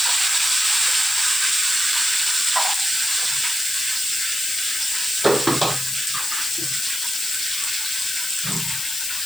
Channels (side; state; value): left; noise; hiss, 2 dB below the sound